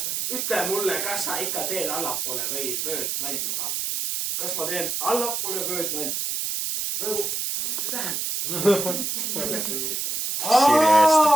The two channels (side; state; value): right; noise; hiss, 1 dB below the sound